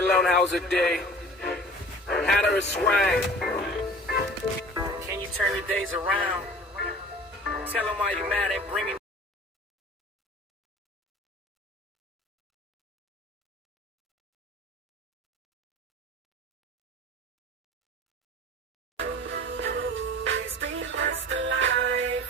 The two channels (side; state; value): both; normal; correlation 0.43